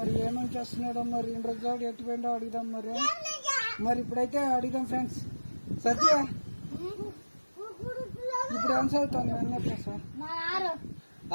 ఏమేమి చేస్తున్నాడో మరి ఇన్ని రోజులు ఎట్టిపోయిండో అడుగుదాం. మరి ఇప్పుడైతే అడుగుదాం ఫ్రెండ్స్. సత్య, ఇప్పుడు ఏం చదువుతాను అన్నప్పుడు సార్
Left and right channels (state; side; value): inverted; both; correlation -1.00